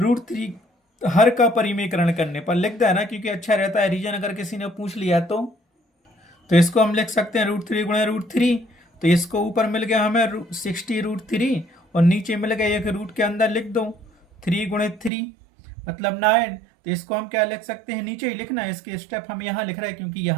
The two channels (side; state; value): left; drops out; at 15.1 s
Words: हर का परिमेयकरण करने पर लिख देना, क्योंकि अच्छा रहता है रीजन अगर किसी ने पूछ लिया तो इसको हम लिख सकते हैं √3 गुणा √3, तो इसको ऊपर मिल गया हमें 60√3 और नीचे मिल गया एक रूट के अंदर लिख दो 3 गुणित 3 मतलब 9। तो इसको हम क्या लिख सकते हैं, नीचे ही लिखना है, इसके स्टेप हम यहाँ लिख रहे हैं क्योंकि